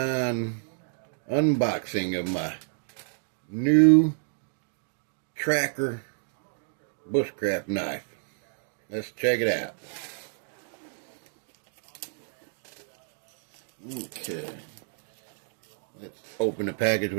unboxing of my new tracker bushcraft knife. Let's check it out. Okay. Let's open the package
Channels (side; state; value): left; silent; digital silence